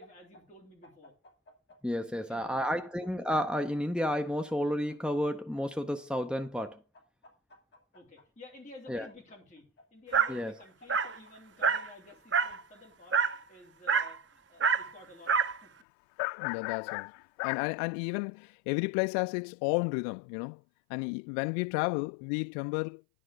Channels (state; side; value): drops out; right; at 15.8 s